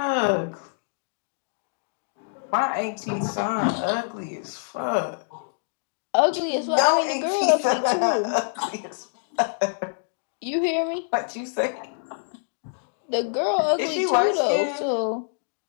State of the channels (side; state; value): right; silent; digital silence